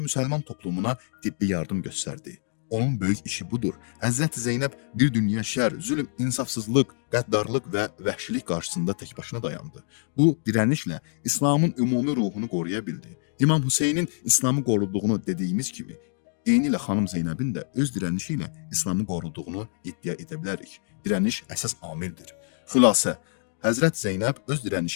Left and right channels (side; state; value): right; silent; digital silence